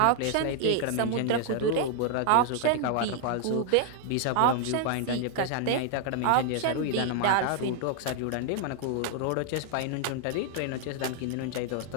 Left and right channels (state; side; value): different; both; correlation 0.00